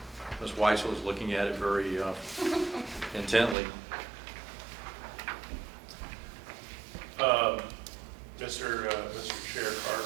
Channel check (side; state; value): left; drops out; at 3.6 s